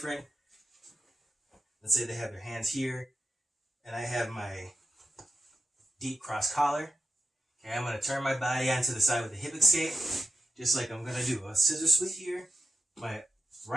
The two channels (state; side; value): normal; both; correlation 0.90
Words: let's say they have their hands here and I have my deep cross collar. Okay, I'm going to turn my body onto the side with the hip escape, just like I'm going to do a scissor sweep here. My